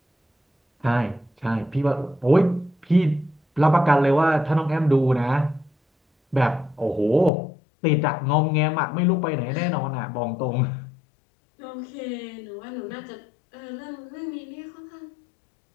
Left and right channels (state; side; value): drops out; right; at 7.3 s